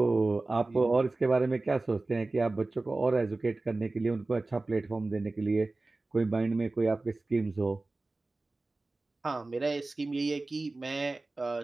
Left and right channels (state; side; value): quieter; left; 3.2 dB